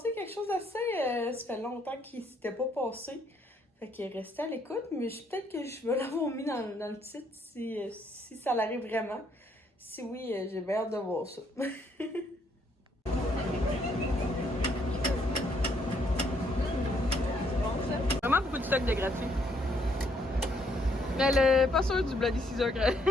quelque chose d'assez... ça fait longtemps qu'il s'était pas passé. Fait que restez à l'écoute, mais peut-être que je vais l'avoir mis dans le titre si ça l'arrive vraiment. Si oui, j'ai bien hâte de voir ça. Vraiment beaucoup de stock de gratuit. Mais elle est pas sûre du Bloody Caesar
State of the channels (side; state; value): both; normal; correlation 0.70